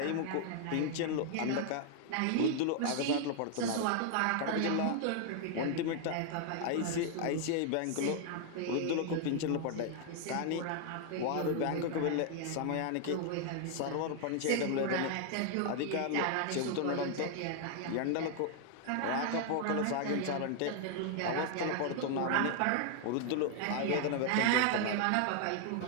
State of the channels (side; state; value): both; different; correlation 0.00